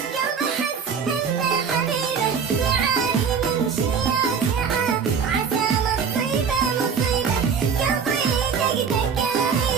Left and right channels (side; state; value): left; quieter; 6.4 dB